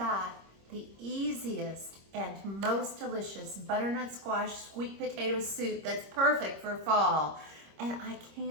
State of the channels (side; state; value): left; late; 26 ms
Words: got the easiest and most delicious butternut squash sweet potato soup that's perfect for fall. And I